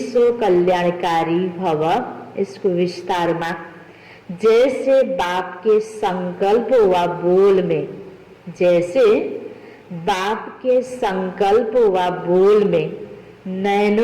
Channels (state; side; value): identical; both; correlation 1.00